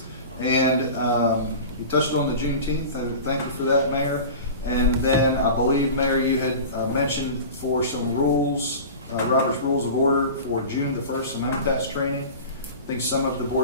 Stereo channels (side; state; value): both; inverted; correlation -0.34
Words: And you touched on the Juneteenth, thank you for that, Mayor. And then I believe, Mayor, you had mentioned for some rules, Robert's Rules of Order for June the 1st, some MTS training. I think some of the